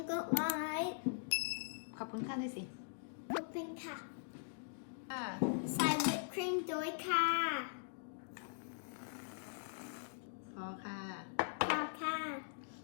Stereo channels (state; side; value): silent; right; digital silence